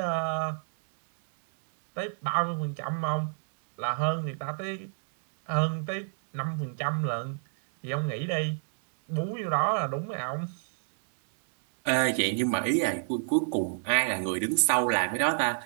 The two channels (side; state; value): left; silent; digital silence